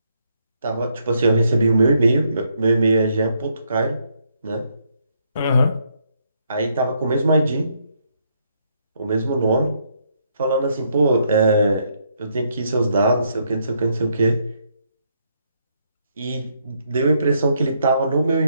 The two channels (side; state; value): both; inverted; correlation -0.74